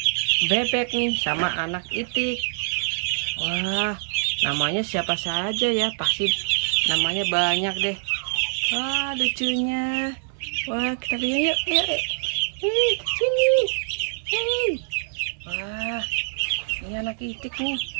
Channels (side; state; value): left; silent; 61 dB below the other